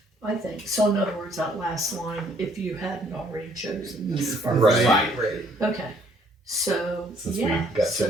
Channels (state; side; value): normal; both; correlation 0.64